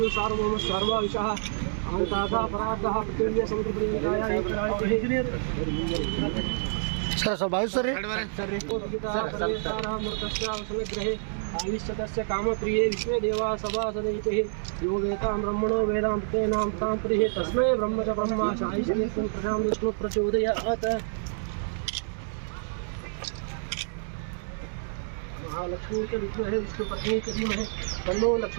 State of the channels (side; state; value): left; silent; digital silence